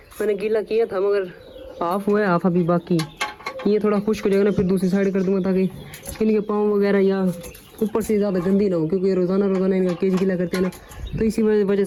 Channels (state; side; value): identical; both; correlation 1.00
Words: मैंने गीला किया था, मगर हाफ हुआ है, हाफ अभी बाकी। ये थोड़ा खुश्क हो जाएगा ना, फिर दूसरी साइड कर दूंगा ताकि इनके पाँव वगैरह या ऊपर से ज़्यादा गंदी ना हो, क्योंकि ये रोज़ाना इनका केज गीला करते हैं ना। तो इसी वजह